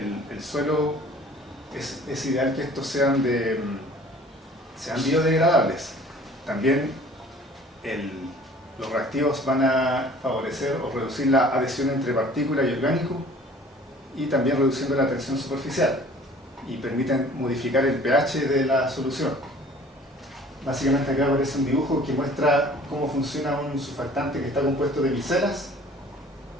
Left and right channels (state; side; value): normal; both; correlation 0.50